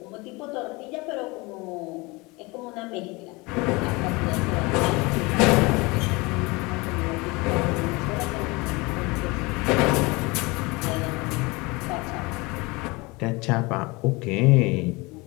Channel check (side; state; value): right; quieter; 25.0 dB